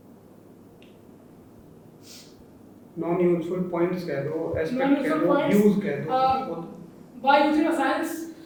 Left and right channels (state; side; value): identical; both; correlation 1.00